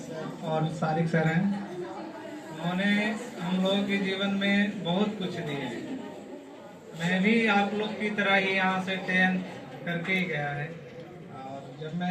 सर और सारिक सर हैं। उन्होंने हम लोगों के जीवन में बहुत कुछ दिए हैं। मैं भी आप लोग की तरह ही यहाँ से 10th करके ही गया है। और जब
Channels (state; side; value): identical; both; correlation 1.00